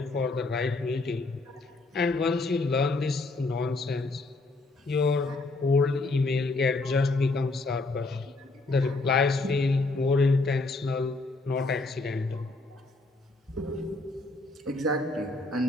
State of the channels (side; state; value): right; quieter; 3.3 dB